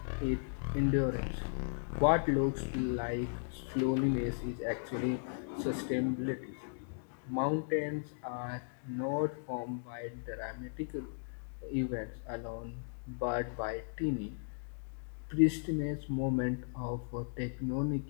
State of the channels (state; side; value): silent; right; digital silence